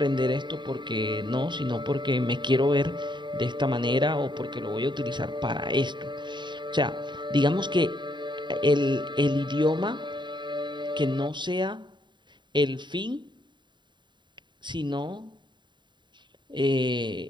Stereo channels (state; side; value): late; left; 0.22 ms